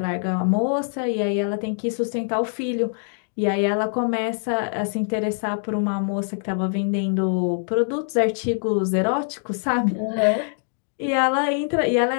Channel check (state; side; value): silent; right; digital silence